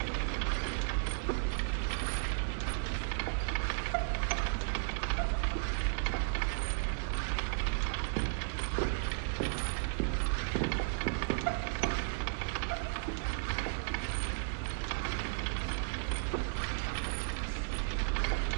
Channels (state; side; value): silent; left; digital silence